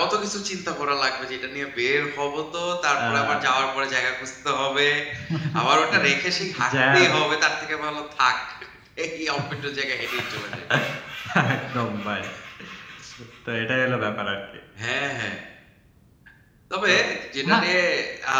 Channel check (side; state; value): both; identical; correlation 1.00